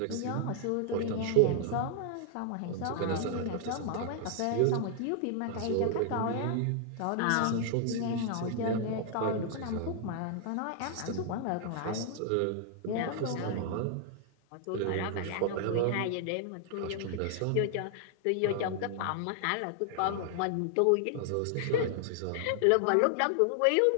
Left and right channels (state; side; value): different; both; correlation 0.00